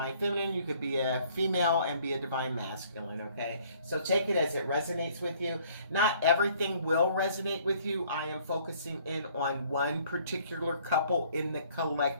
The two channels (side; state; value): both; inverted; correlation -0.60